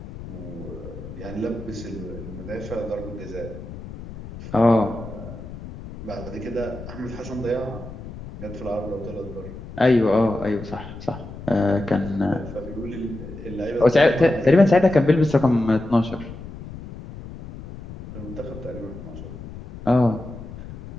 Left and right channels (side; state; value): left; noise; rumble, 12 dB below the sound